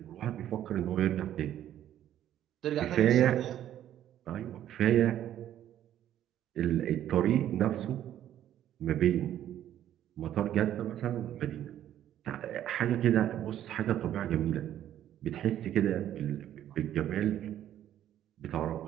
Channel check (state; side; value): quieter; left; 11.5 dB